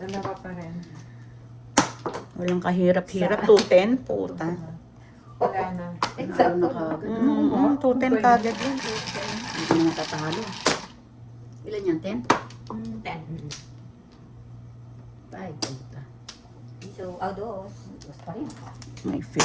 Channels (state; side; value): identical; both; correlation 1.00